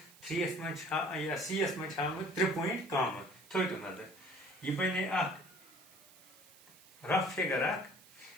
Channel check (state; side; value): noise; right; hiss, 23 dB below the sound